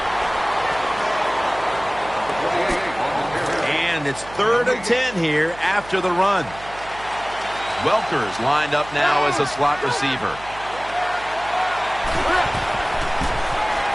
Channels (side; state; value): right; noise; hum, 18 dB below the sound